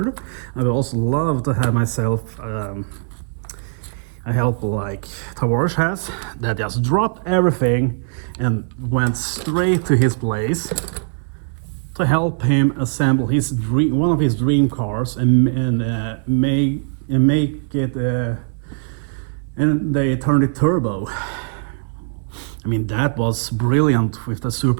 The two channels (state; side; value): silent; left; 65 dB below the other